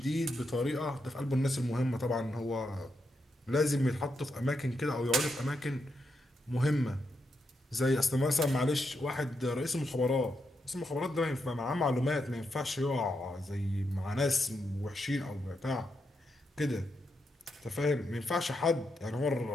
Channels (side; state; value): both; normal; correlation 0.83